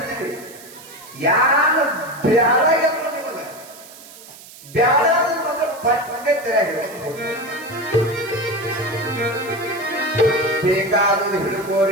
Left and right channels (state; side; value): noise; right; hiss, 19 dB below the sound